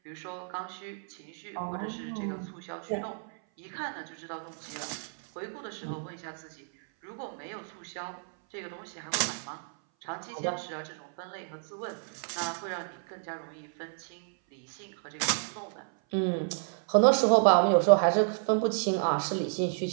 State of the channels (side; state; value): left; silent; 57 dB below the other